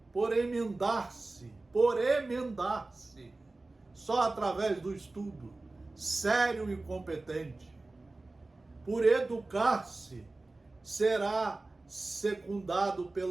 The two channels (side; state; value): left; quieter; 3.2 dB